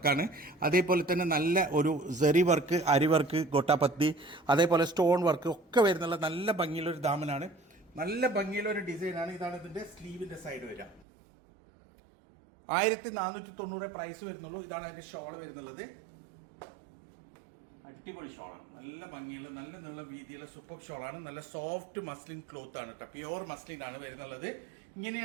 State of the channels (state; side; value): drops out; left; at 11.1 s